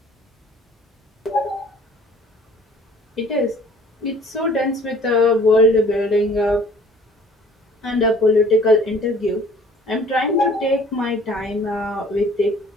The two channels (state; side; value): normal; both; correlation 0.53